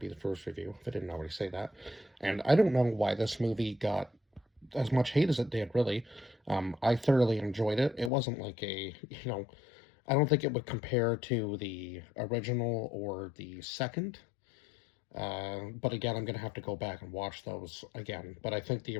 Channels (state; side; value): drops out; right; at 8.1 s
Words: the first review, if I didn't already say that. And I don't know why this movie got as much hate as it did, really. I thoroughly enjoyed it. It wasn't like I don't think it would compare to the original or the second. But again, I'm going to have to go back and watch those again. But I think the